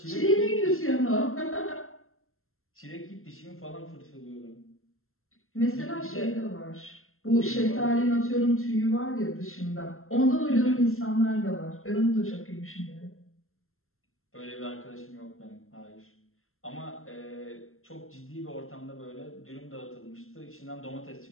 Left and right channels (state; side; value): late; right; 0.62 ms